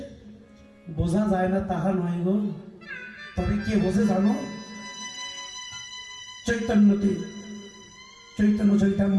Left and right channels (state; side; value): identical; both; correlation 1.00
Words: বোঝা যায় না তাহা নয় গো, তবে কে বোঝে জানো? চৈতন্যতে চৈতন্য